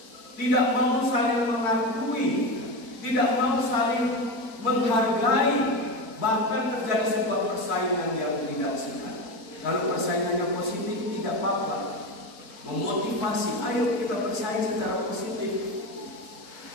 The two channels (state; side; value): late; right; 4.5 ms